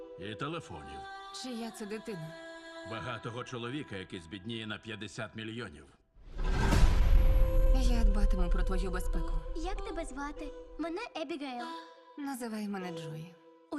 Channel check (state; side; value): identical; both; correlation 1.00